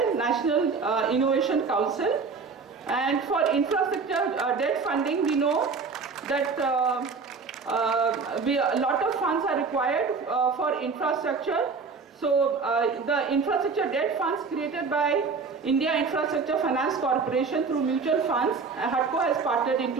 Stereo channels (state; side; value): quieter; left; 4.9 dB